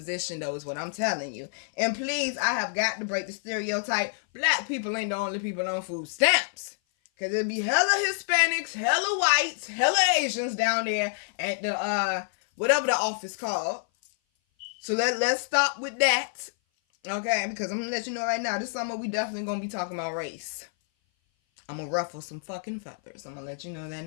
though, is what I'm telling you. And please, I have got to break the stereotype. Black people ain't the only people on food stamps. Because it'd be hella Hispanics, hella whites, hella Asians down there at the, whatever the office called. So let's stop with that. Okay, because I'm going to let you know right now, this summer we definitely going to be talking about race. I'm going to ruffle some fucking feathers. I'm going to let you know that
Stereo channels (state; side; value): silent; right; 56 dB below the other